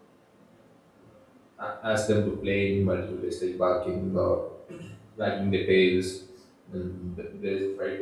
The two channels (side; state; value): both; identical; correlation 1.00